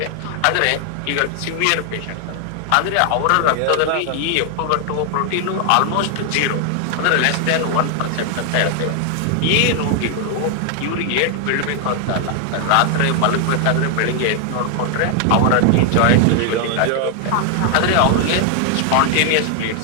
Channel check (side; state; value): both; different; correlation 0.00